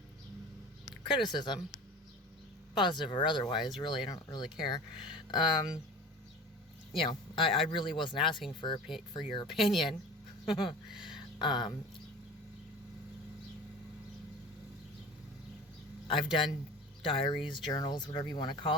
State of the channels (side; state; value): both; normal; correlation 0.37